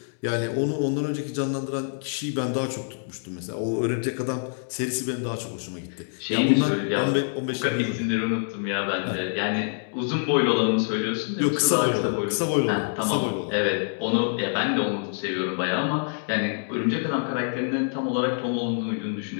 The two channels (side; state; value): right; silent; digital silence